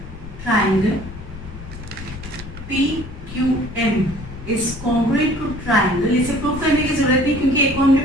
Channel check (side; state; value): left; noise; rumble, 12 dB below the sound